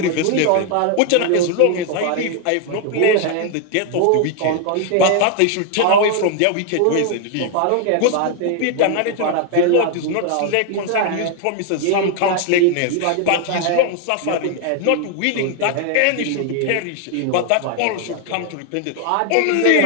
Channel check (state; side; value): different; both; correlation 0.00